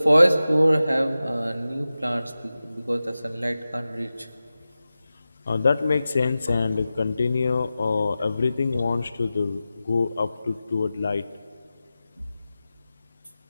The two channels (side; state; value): both; inverted; correlation -0.95